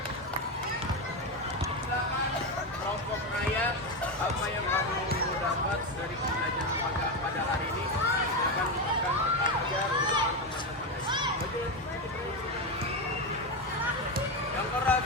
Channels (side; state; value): both; normal; correlation 0.12